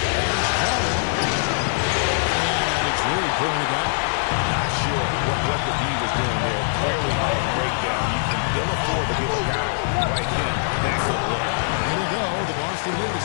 Crowder. And it's Reed pulling it down. Not sure what the D was doing there. Clearly a breakdown. You can ill afford to give a guy like him that good look. It'll go. The Boston lead is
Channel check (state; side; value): silent; right; 64 dB below the other